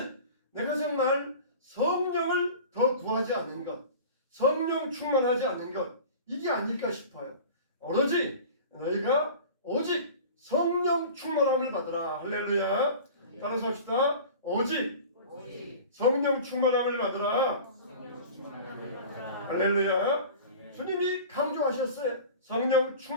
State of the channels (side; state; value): both; inverted; correlation -0.38